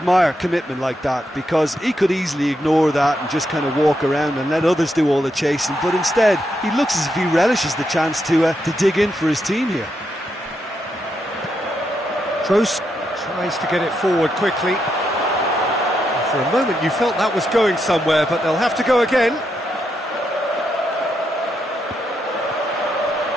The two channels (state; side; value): normal; both; correlation 0.81